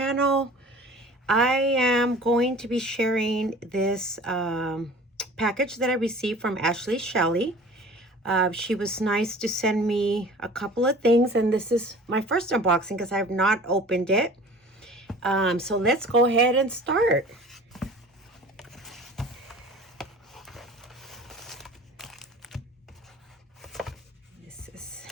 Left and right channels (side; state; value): both; normal; correlation 0.44